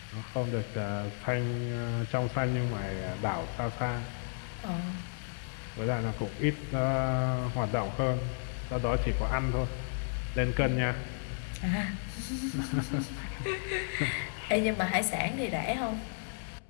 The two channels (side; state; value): right; silent; 56 dB below the other